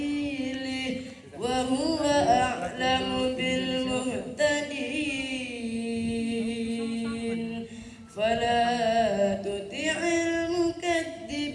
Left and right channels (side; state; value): both; identical; correlation 1.00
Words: wa huwa a'lamu bil muhtadin fala tuti'il